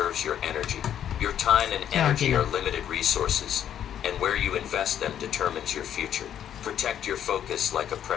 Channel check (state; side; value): quieter; right; 9.9 dB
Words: your energy. Your time and energy are limited resources, and where you invest them determines your future. Protect your focus like a